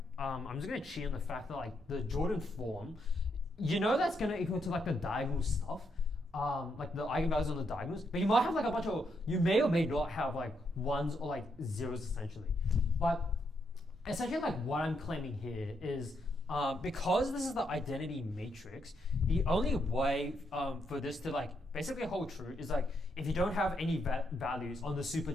I'm just gonna cheat on the fact that like the Jordan form, you know that's gonna equal to like the diagonal stuff, like the eigenvalues on the diagonals, but you might have like a bunch of, you may or may not have like ones or like zeros essentially. But essentially like what I'm claiming here is because this is the identity matrix, the only way for this to like basically hold true is like if you don't have any values on the super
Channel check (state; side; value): normal; both; correlation 0.78